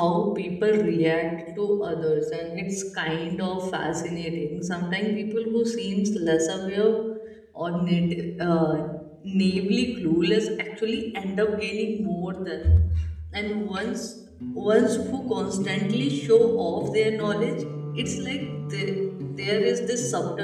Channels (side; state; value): both; identical; correlation 1.00